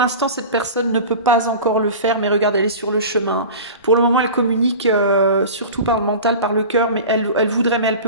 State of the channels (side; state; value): both; inverted; correlation -0.34